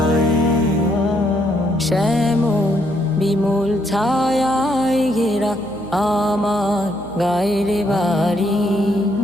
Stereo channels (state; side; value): noise; right; hum, 20 dB below the sound